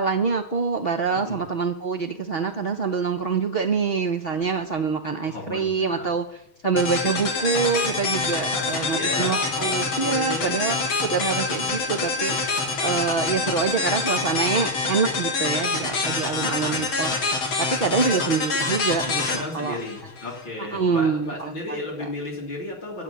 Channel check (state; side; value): late; right; 6.3 ms